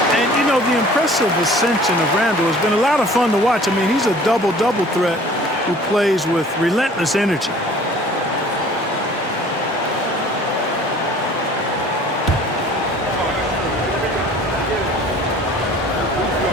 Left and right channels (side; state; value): both; normal; correlation 0.49